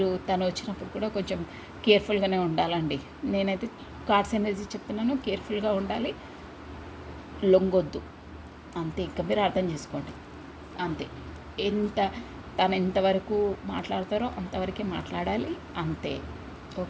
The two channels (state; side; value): identical; both; correlation 1.00